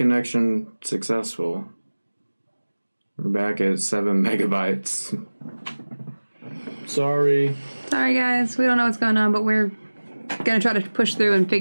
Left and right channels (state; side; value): inverted; both; correlation -1.00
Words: successful. We're back at 7 megabytes. Sorry. Sorry, guys. We don't know what's going on, but we're going to try to push through and